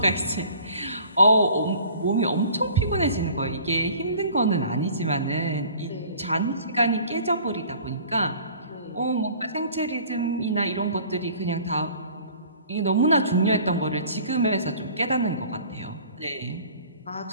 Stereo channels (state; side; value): inverted; both; correlation -0.49